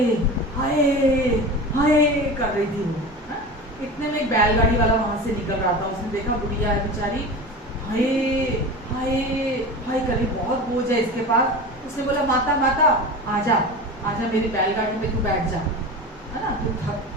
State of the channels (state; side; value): normal; both; correlation 0.31